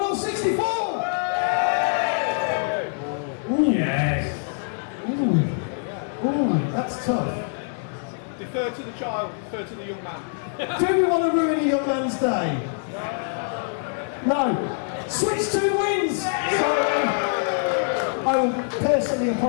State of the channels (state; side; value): silent; right; digital silence